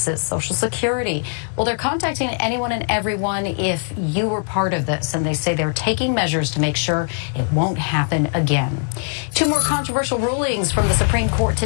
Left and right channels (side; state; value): right; silent; 57 dB below the other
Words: Social Security. Well, they're contacting anyone and everyone if you were part of this, and they say they're taking measures to make sure it won't happen again. Two more controversial rulings from the Supreme Court